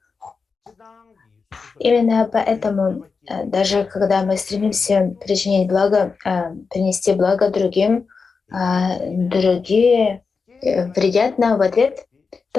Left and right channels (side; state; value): right; quieter; 4.9 dB